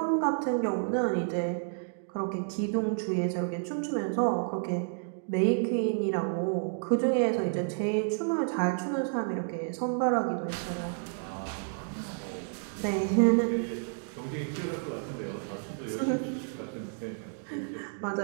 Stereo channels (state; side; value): silent; left; digital silence